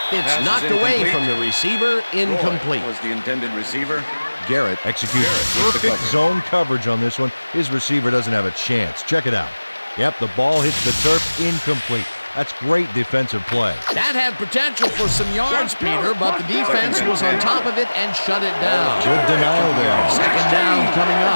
it's knocked away from the receiver. Incomplete. Was the intended receiver. Garrett executes perfect zone coverage on this one. His receiver doesn't have a chance. Check it out. Yep, the ball hits the turf. Incomplete. That's great defensive play. That had potential for some yards, Peter, but the defense was on top of it and shut it down. Good denial there. Second down coming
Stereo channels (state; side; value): inverted; both; correlation -1.00